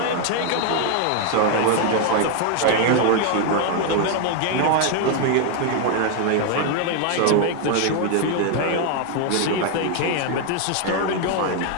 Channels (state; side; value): different; both; correlation 0.01